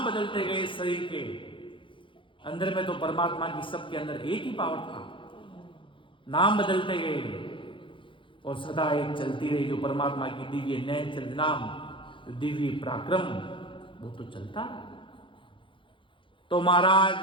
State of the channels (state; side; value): late; right; 0.25 ms